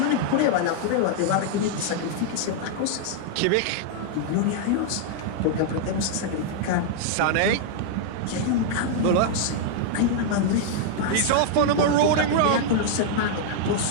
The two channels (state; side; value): different; both; correlation -0.01